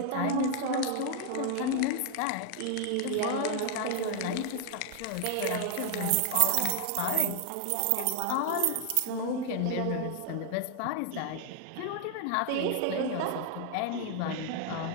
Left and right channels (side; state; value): both; different; correlation 0.00